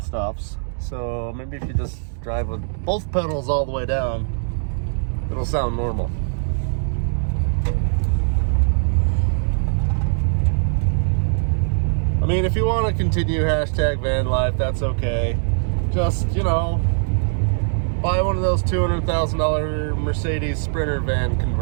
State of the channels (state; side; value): silent; left; digital silence